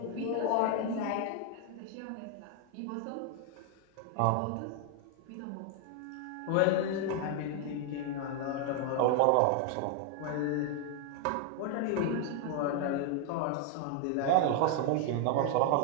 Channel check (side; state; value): both; different; correlation 0.00